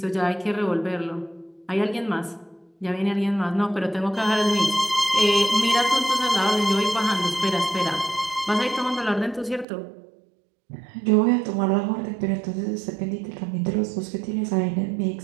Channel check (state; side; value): drops out; left; at 9.7 s